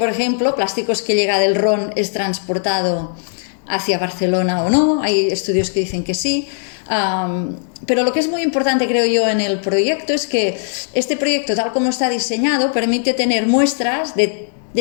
ejemplo, plásticos que llega del Ron es transportado hacia Barcelona o no. Hay estudios que dicen que sí. Pero lo que es muy importante, creo yo, en el proyecto es que este proyecto, tal como está diseñado, permite tener muestras de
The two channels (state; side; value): silent; right; digital silence